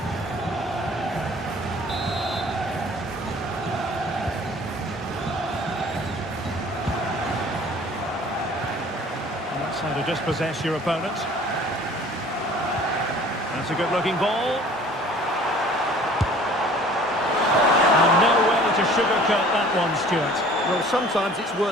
That's how to dispossess your opponent. That's a good-looking ball. And no way to sugarcoat that one, Stuart. Well, sometimes it's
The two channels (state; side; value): normal; both; correlation 0.50